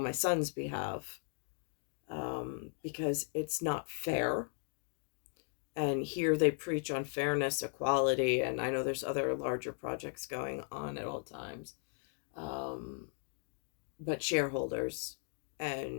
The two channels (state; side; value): silent; right; 53 dB below the other